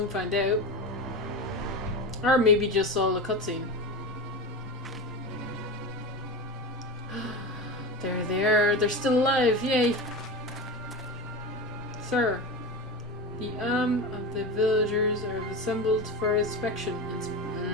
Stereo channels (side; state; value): both; normal; correlation 0.24